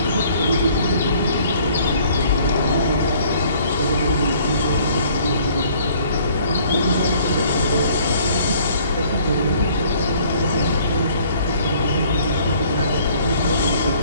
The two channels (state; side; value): inverted; both; correlation -0.58